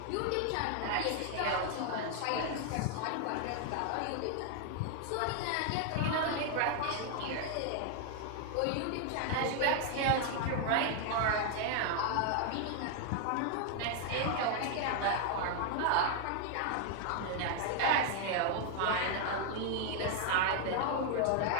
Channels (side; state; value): both; different; correlation 0.00